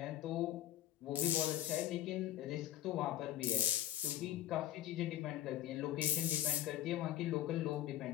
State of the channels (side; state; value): right; quieter; 13.1 dB